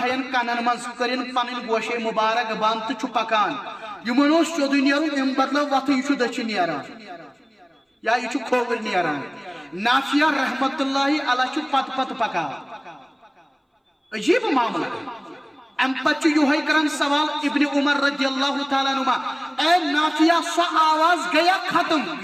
کنن مز کرن پنن گوشے مبارک بند تو پکان یمن سیود نیرن ام بدلو وت یہ دچھ نیران یا یہ کھوور نیران نافیہ رحمت اللہ علیہ پت پت پکان عجیب معاملہ ام پتہ یہ کران سوال ابن عمر رضی اللہ تعالیٰ عنہ اے نافیہ سو آواز گیا ختم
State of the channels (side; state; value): both; identical; correlation 1.00